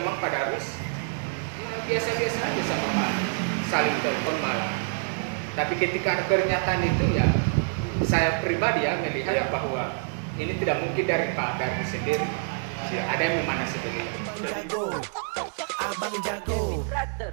Pak Darwis biasa-biasa aja sama Pak, saling telepon malah. Tapi ketika ada pernyataan itu ya, saya pribadi ya melihat bahwa ini tidak mungkin dari Pak Darwis sendiri. Ada yang memana seperti itu. Bang Jago, Abang Jago,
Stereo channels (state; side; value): silent; left; 60 dB below the other